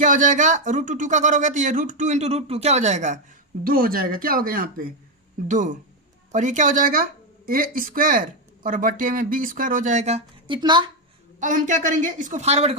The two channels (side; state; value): both; normal; correlation 0.05